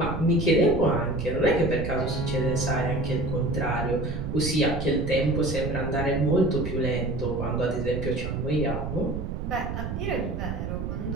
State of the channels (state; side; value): noise; right; rumble, 4 dB below the sound